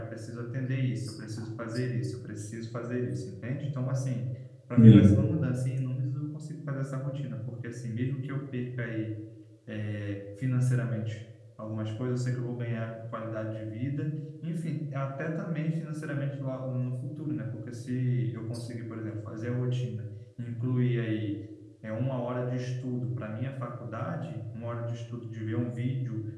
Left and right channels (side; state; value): both; identical; correlation 1.00